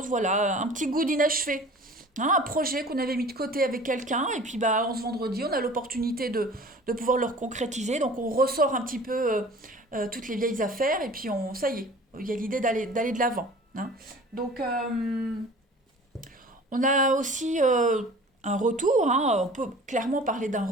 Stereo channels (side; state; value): both; normal; correlation 0.44